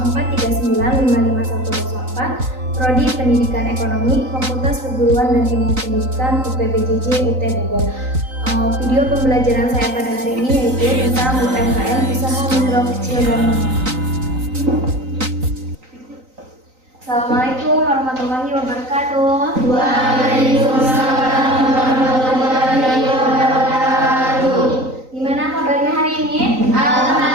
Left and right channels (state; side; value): late; left; 3.9 ms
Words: Prodi Pendidikan Ekonomi, Fakultas Perguruan dan Ilmu Pendidikan UPBJJ UT Bogor. Video pembelajaran saya pada hari ini yaitu tentang UMKM, usaha mikro kecil dan menengah. Assalamualaikum warahmatullahi wabarakatuh. Waalaikumsalam warahmatullahi wabarakatuh. Gimana kabarnya hari ini?